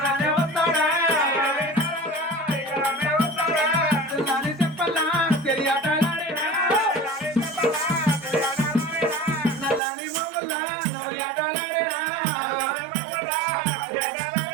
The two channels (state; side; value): drops out; left; at 9.8 s